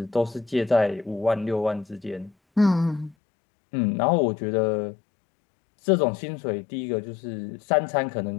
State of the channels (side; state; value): right; drops out; at 3.2 s